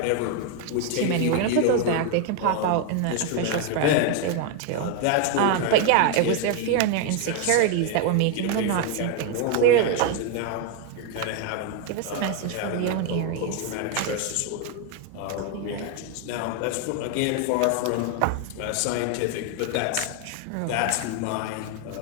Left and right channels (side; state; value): both; different; correlation 0.01